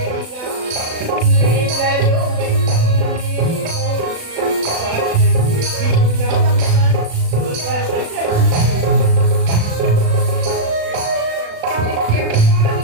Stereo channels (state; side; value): late; left; 36 ms